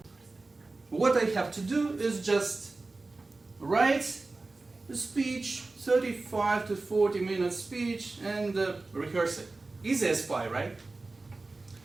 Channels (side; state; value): left; quieter; 3.4 dB